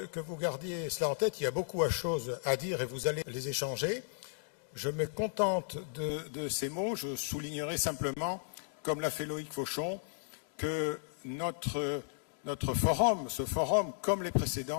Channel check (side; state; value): right; silent; digital silence